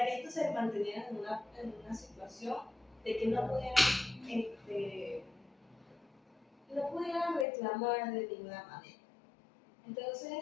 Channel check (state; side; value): drops out; right; at 7.5 s